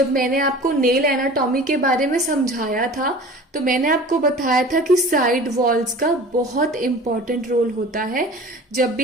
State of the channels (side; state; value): both; normal; correlation 0.41